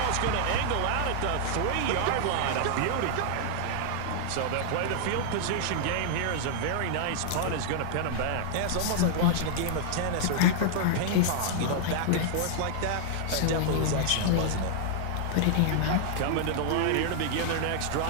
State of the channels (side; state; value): both; different; correlation -0.01